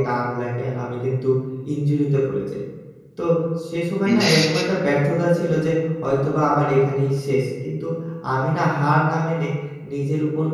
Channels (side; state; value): both; identical; correlation 1.00